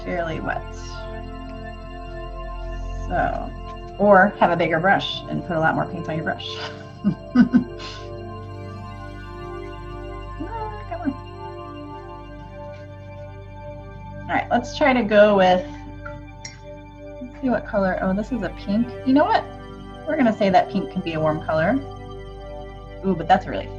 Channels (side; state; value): both; identical; correlation 1.00